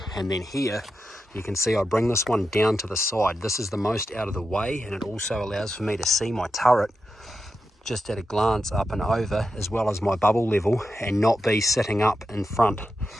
And then here, you can see I bring this one down to the side. This is the most out of the way, and it also allows for me to see my turret just at a glance up and over, as well as my bubble level, and not be sitting up in front,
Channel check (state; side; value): normal; both; correlation 0.89